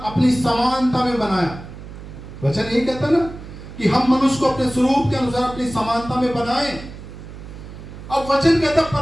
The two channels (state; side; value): noise; right; hum, 14 dB below the sound